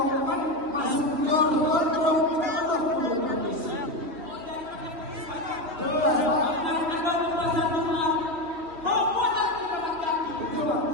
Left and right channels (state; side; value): late; left; 3.1 ms